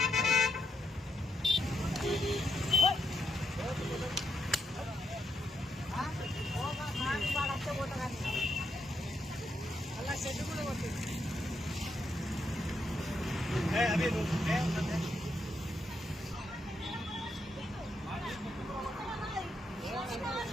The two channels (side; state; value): both; normal; correlation 0.81